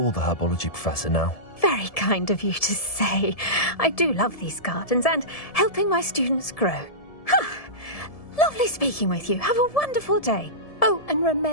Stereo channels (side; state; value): right; late; 1.7 ms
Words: the herbology professor now. Very kind of you to say. I do love these gardens and helping my students grow. Lovely speaking with you. Have a wonderful day. Oh, and